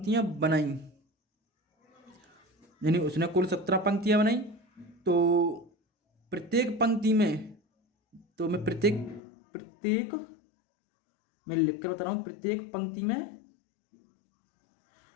बनाई, यानी उसने कुल 17 पंक्तियां बनाई। तो प्रत्येक पंक्ति में, तो मैं प्रत्येक मैं लिख कर बता रहा हूँ, प्रत्येक पंक्ति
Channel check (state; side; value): drops out; right; at 9.2 s